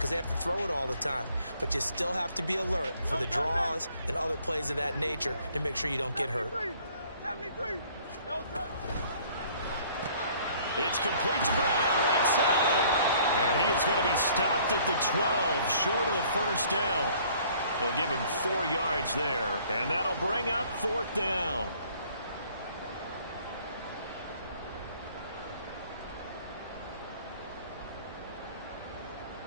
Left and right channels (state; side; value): inverted; both; correlation -0.58